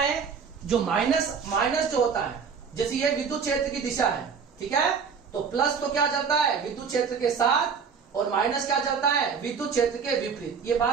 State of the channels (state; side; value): quieter; left; 6.1 dB